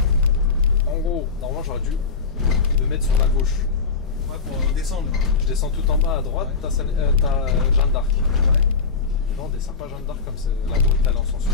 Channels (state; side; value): quieter; right; 4.9 dB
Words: En gros, normalement j'aurais dû me mettre sur la gauche. Ouais, pour descendre. Je descends tout en bas à droite, Ouais. t'as Jeanne d'Arc. Ouais. Non, on descend pas Jeanne d'Arc comme c'est la route elle en sens